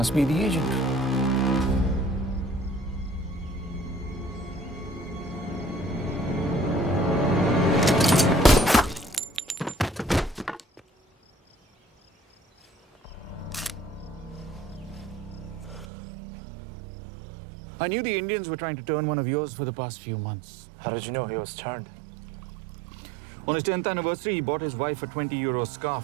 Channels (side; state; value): left; drops out; at 15.9 s